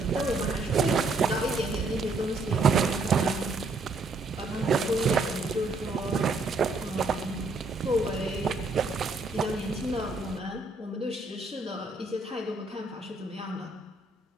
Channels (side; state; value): left; quieter; 3.3 dB